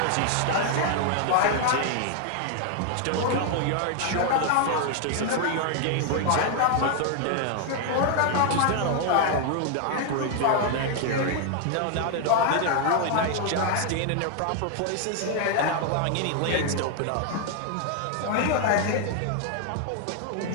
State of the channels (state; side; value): different; both; correlation 0.00